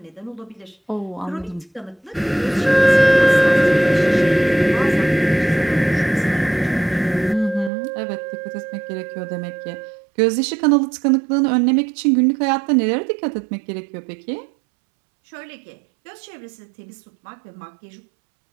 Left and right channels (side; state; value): left; drops out; at 7.7 s